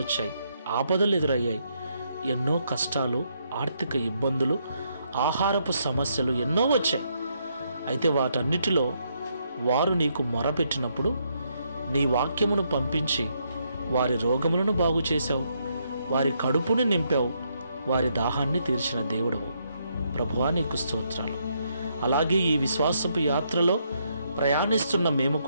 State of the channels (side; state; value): both; inverted; correlation -0.76